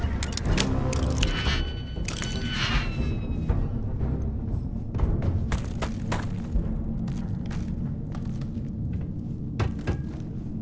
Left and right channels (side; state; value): both; identical; correlation 1.00